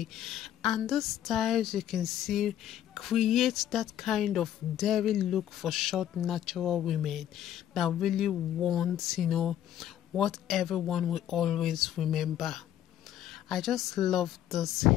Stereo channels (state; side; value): quieter; right; 11.1 dB